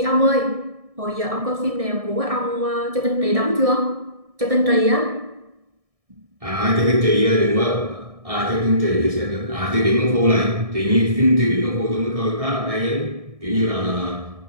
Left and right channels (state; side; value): late; left; 1.6 ms